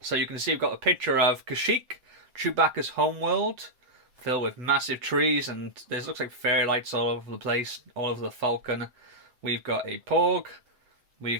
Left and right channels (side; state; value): left; late; 7.8 ms